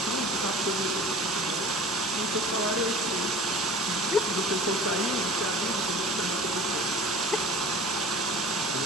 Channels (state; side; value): normal; both; correlation 0.41